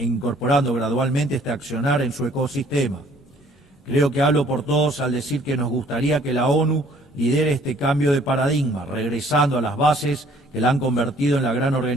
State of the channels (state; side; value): normal; both; correlation 0.58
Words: gradualmente este accionar en su ecosistema. Creo que hablo por todos al decir que nos gustaría que la ONU lidere este cambio de paradigma, regresando a las bases que la han convertido en la gran